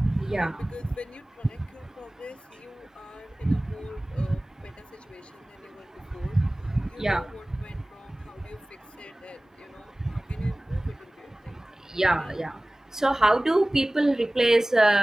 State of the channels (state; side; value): normal; both; correlation 0.98